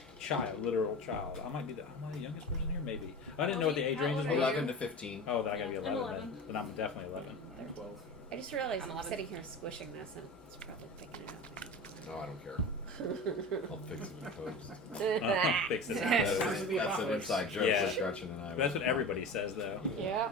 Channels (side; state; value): both; normal; correlation 0.32